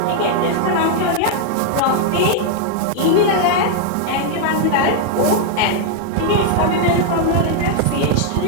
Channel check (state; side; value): different; both; correlation 0.00